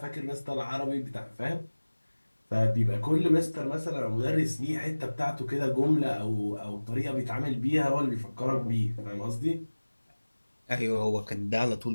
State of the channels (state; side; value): inverted; both; correlation -1.00